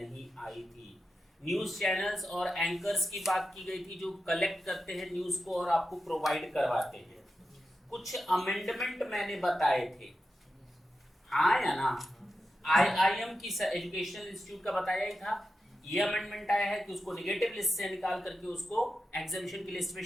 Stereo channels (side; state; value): both; normal; correlation 0.90